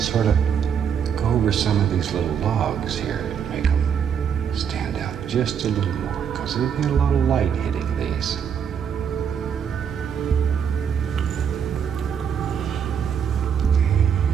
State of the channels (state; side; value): quieter; left; 7.7 dB